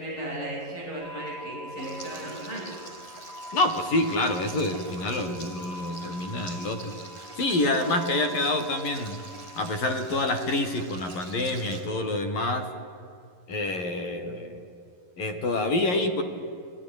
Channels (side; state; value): right; late; 11 ms